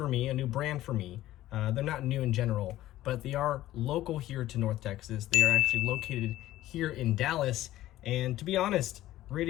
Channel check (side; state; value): right; quieter; 14.8 dB